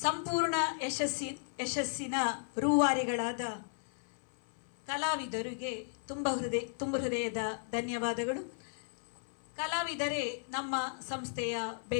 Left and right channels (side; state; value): right; silent; 54 dB below the other